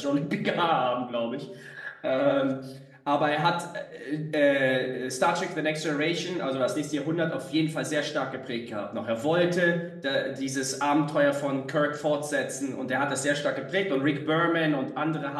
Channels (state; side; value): identical; both; correlation 1.00